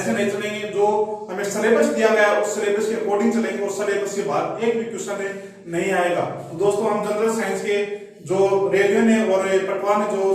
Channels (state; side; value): identical; both; correlation 1.00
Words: नहीं चलेंगे। जो हमें सिलेबस दिया गया है उस सिलेबस के अकॉर्डिंग चलेंगे और सिलेबस के बाद एक भी क्वेश्चन नहीं आएगा। तो दोस्तों हम जनरल साइंस के जो रेडियो ने और पटवार ने जो